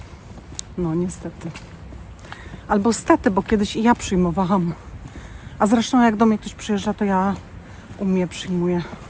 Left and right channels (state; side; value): identical; both; correlation 1.00